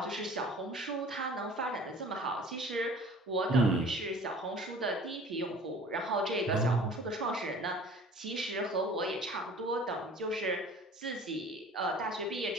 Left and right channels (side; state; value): both; normal; correlation 0.46